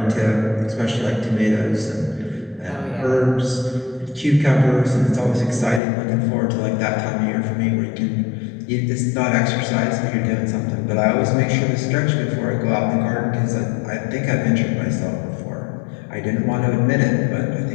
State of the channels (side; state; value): right; drops out; at 5.8 s